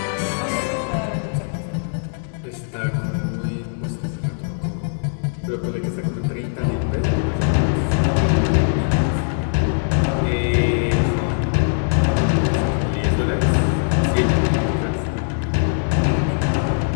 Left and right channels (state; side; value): silent; right; digital silence